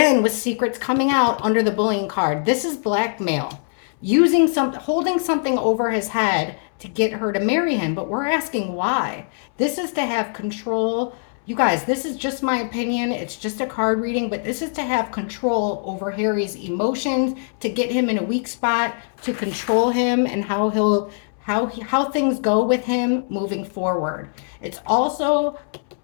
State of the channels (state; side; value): silent; right; 64 dB below the other